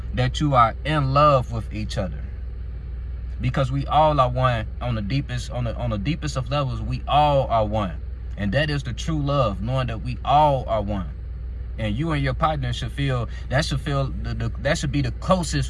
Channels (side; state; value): both; identical; correlation 1.00